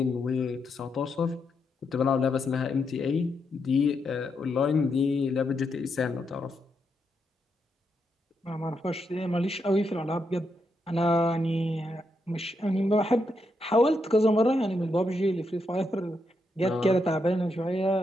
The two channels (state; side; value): normal; both; correlation 0.82